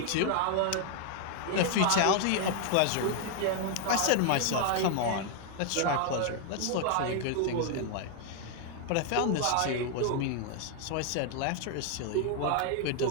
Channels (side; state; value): both; different; correlation 0.00